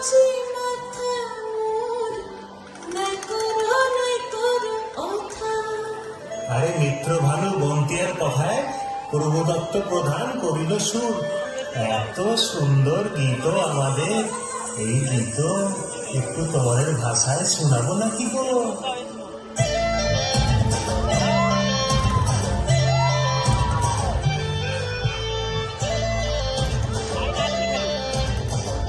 আরে মিত্র ভালো বন্তিয়ার কথায় প্রভুদত্ত প্রধান করিল সুর। এত সুন্দর গীত আমাদের, এই গীত একটু তোমাদের ভাষায় শোনাবো না কি বলো?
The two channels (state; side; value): identical; both; correlation 1.00